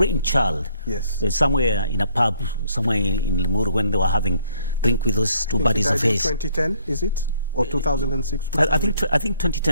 Yes. Somewhere in a pub, somewhere in Limuru, when they were having drink with those 2 buddies of his. 2010, is it? Or 2006? I think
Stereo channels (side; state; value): both; inverted; correlation -0.66